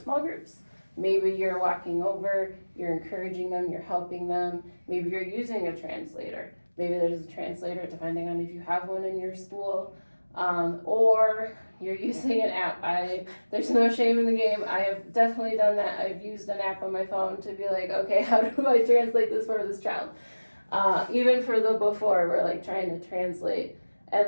groups. Maybe you're walking over, you're encouraging them, you're helping them, maybe you're using a translator. Maybe there's a translator depending on if you have one in your school, or you're using an app. There's no shame in the game. I have definitely done that. I've used an app on my phone to be like, okay, how do I translate this for this child? Even for the before, we're like trying to translate,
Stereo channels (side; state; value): both; inverted; correlation -1.00